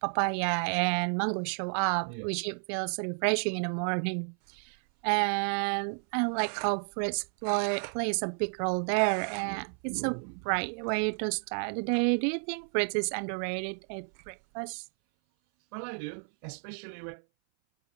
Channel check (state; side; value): silent; left; 57 dB below the other